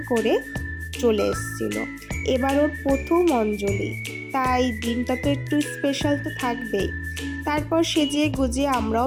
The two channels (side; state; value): both; identical; correlation 1.00